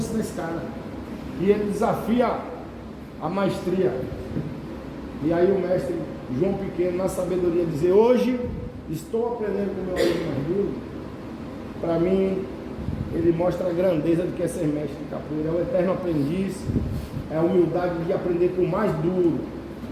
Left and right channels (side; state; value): both; identical; correlation 1.00